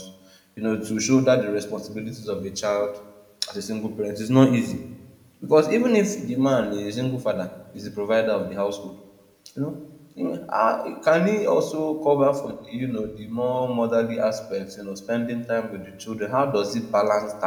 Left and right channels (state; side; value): identical; both; correlation 1.00